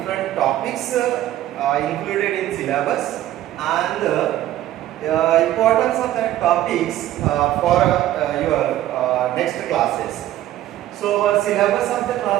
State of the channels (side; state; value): left; quieter; 13.5 dB